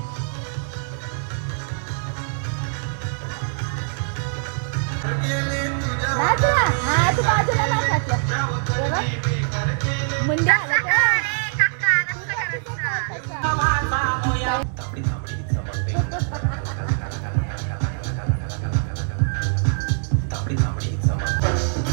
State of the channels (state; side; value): silent; left; 62 dB below the other